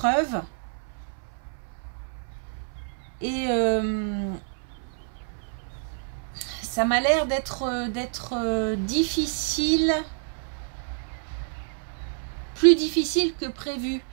Et ça m'a l'air d'être difficile, plus difficile que prévu.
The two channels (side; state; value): left; silent; 60 dB below the other